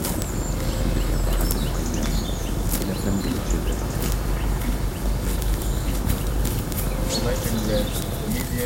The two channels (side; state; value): both; identical; correlation 1.00